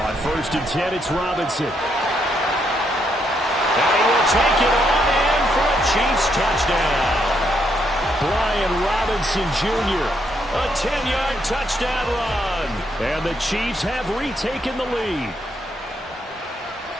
On 1st and 10, it's Robinson. And he will take it on in for a Chiefs touchdown. Brian Robinson Jr., a 10-yard touchdown run. And the Chiefs have retaken the lead.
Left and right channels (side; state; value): both; normal; correlation 0.76